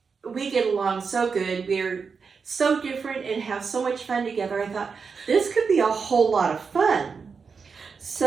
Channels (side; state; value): left; quieter; 5.4 dB